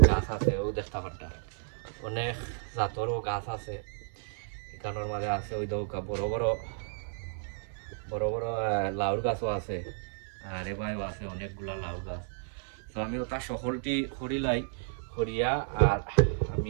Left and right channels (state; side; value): silent; left; digital silence